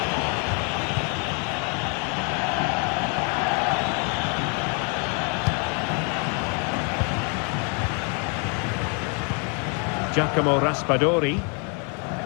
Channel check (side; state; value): right; quieter; 37.0 dB